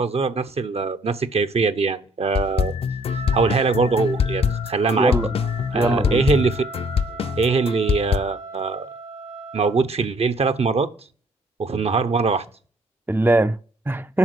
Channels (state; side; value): normal; both; correlation 0.62